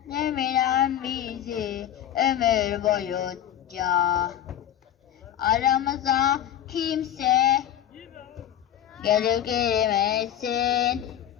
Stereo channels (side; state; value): right; quieter; 10.9 dB